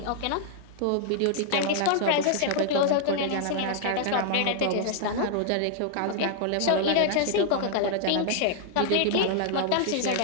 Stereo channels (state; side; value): different; both; correlation -0.01